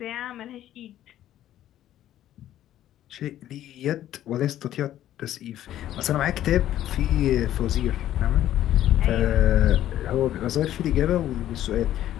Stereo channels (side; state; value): right; quieter; 12.5 dB